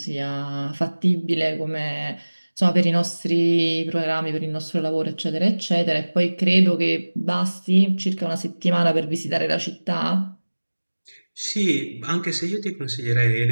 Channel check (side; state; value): both; inverted; correlation -1.00